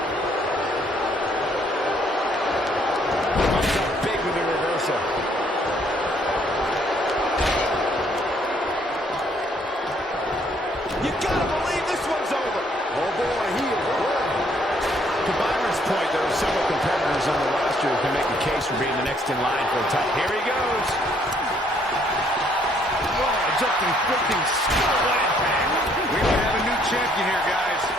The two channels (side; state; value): both; normal; correlation 0.66